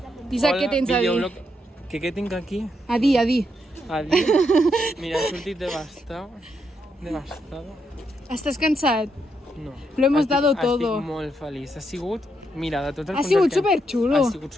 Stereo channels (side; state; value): both; normal; correlation 0.79